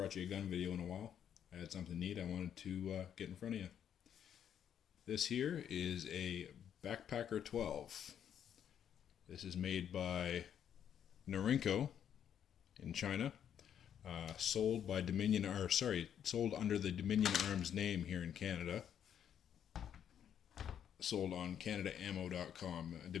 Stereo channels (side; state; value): right; quieter; 9.2 dB